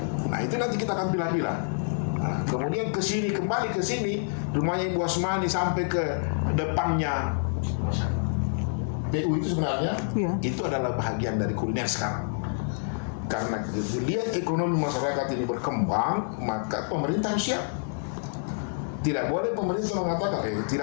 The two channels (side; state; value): right; silent; 60 dB below the other